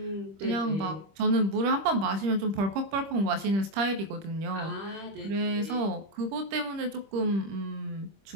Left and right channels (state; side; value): late; left; 25 ms